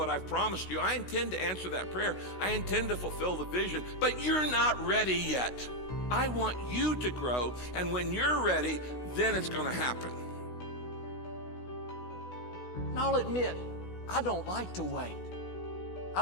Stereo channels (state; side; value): late; right; 16 ms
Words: I've promised you. I intend to answer that prayer. I intend to fulfill the vision, but you're not ready yet. I want you to grow, and when you're ready, then it's going to happen. And I'll admit, I don't like to wait. I